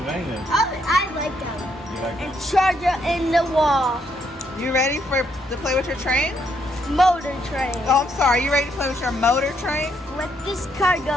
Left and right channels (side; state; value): both; normal; correlation 0.74